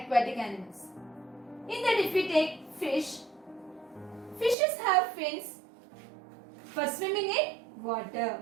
animals. In that if we take fish, fishes have fins for swimming in water.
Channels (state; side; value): drops out; left; at 4.5 s